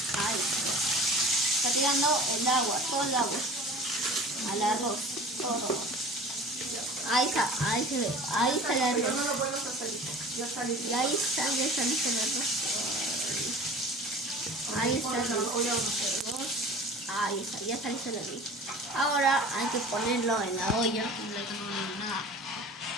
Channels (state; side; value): normal; both; correlation 0.41